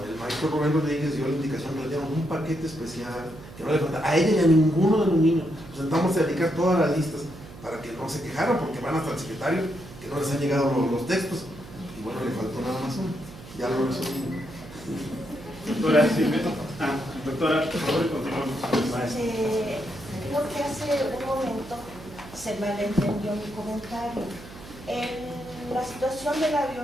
el maestro Rubén Rodríguez dio la indicación que le dieron un paquete especial, que no le faltaba a ella y a ninguno de los niños. Nos sentamos a dedicar todas las listas para que no se quejaran, porque van hasta el secretario, que no les han llegado los textos. Y bueno, le faltó nada más uno. Ya lo resolvimos. Doctora Silvia. Doctora, por favor, continuamos. Creo que hace un momento se malentendió mi comentario. La situación de la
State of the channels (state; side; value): noise; right; hum, 16 dB below the sound